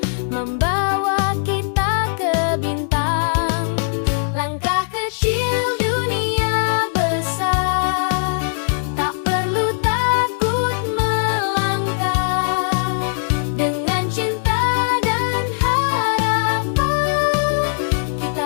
membawa kita ke bintang. Langkah kecil dunia besar, tak perlu takut melangkah. Dengan cinta dan harapan,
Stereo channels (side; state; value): right; silent; digital silence